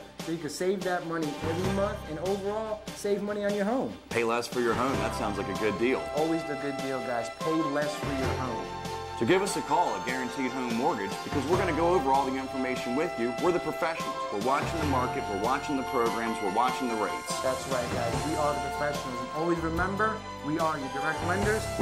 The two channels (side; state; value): both; identical; correlation 1.00